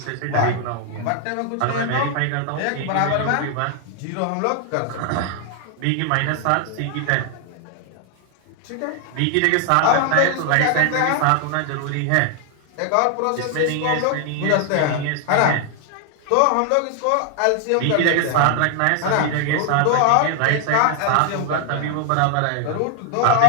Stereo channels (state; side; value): different; both; correlation 0.00